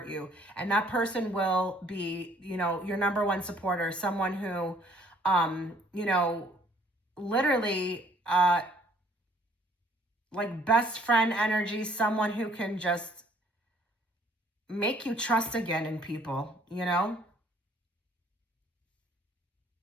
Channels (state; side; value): normal; both; correlation 0.61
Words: you. And that person will be, your number one supporter, someone who, literally, like best friend energy, someone who can just make you trust again in people,